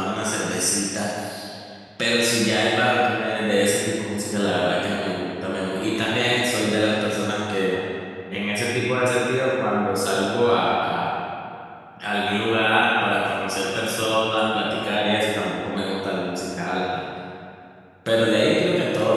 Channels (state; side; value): identical; both; correlation 1.00